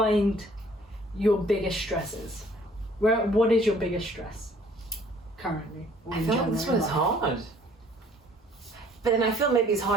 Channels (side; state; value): both; normal; correlation 0.58